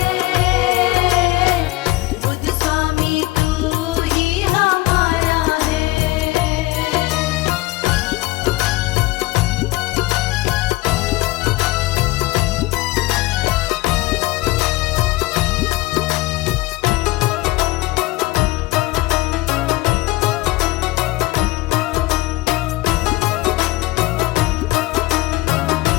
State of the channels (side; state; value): right; quieter; 20.1 dB